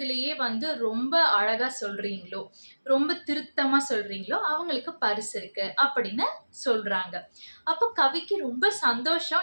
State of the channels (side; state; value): both; inverted; correlation -1.00